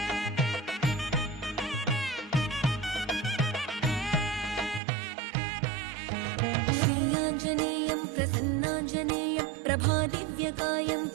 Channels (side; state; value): left; drops out; at 4.8 s